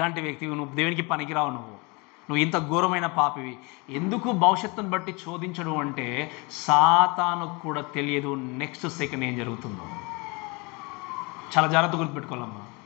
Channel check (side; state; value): right; quieter; 28.3 dB